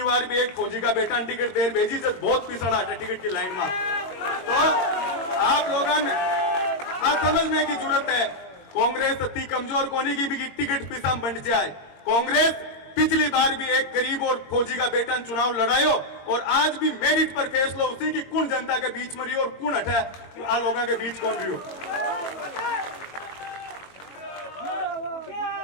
बार भी एक फौजी का बेटा टिकट देर भेजी जब बहुत पिछड़ा हटा टिकट की लाइन में। तो आप लोगों ने समझने की जरूरत है, कांग्रेस अति कमजोर कोनी की भी टिकट पिसा बंट जाए। कांग्रेस पिछली बार भी एक गरीब और फौजी का बेटा चुनाव लड़ायो और आज भी मेरिट पर फैसला उसी की कौन जनता के बीच में रही और कौन हटा आ लोगों के बीच कौन रही हो।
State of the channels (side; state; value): right; late; 22 ms